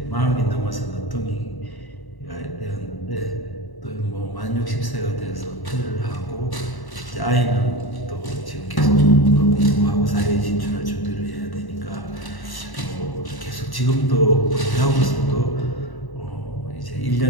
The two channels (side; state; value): right; late; 1.1 ms